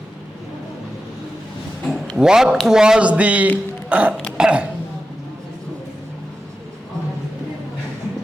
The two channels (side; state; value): both; normal; correlation 0.91